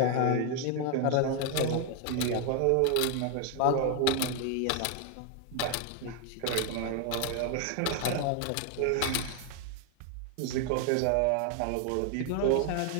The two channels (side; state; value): both; different; correlation 0.00